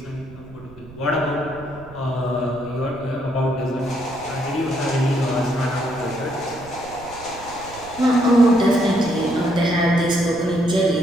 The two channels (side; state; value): right; noise; rumble, 19 dB below the sound